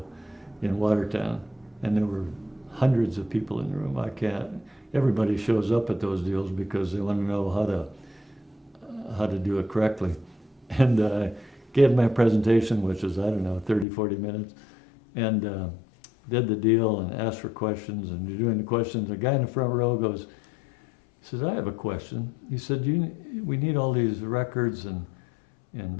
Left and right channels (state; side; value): drops out; right; at 13.9 s